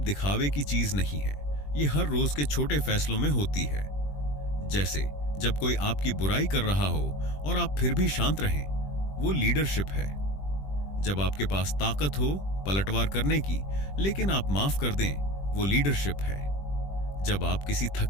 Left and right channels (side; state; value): right; late; 20 ms